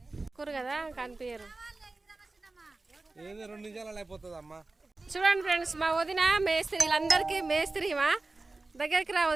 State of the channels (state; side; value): quieter; left; 3.3 dB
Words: కూరు కదా కనిపించరు. చూడండి ఫ్రెండ్స్, మా వదిన మేస్త్రి, వీళ్ళందరికీ మేస్త్రి. మా దగ్గరికి రా